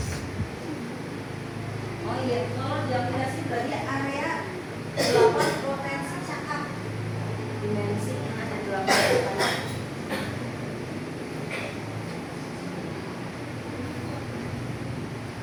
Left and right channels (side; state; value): both; identical; correlation 1.00